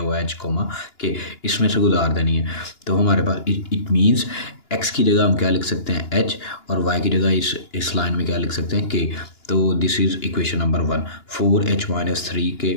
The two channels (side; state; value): right; late; 2.9 ms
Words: हुआ है h, के इसमें से गुजार देनी है। तो हमारे पास इट मीन्स x की जगह हम क्या लिख सकते हैं h, और y की जगह इस लाइन में क्या लिख सकते हैं k। तो this is equation number 1, 4h - 3 के